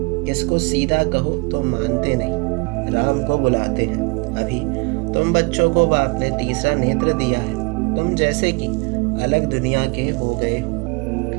इसको सीधा कहो तो मानते नहीं, राम को बुलाते हैं। अभी तुम बच्चों को बाप ने तीसरा नेत्र दिया है, तुम जैसे कि अलग दुनिया के हो गए हो।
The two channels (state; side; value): quieter; left; 29.4 dB